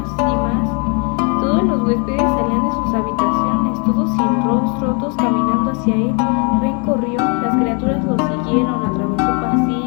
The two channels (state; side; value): quieter; right; 35.7 dB